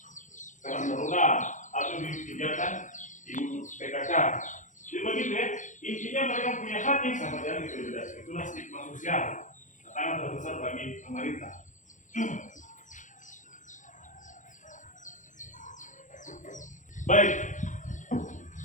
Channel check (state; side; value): late; right; 0.36 ms